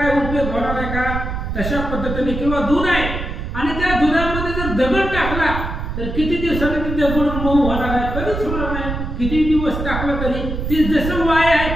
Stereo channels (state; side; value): noise; right; rumble, 5 dB below the sound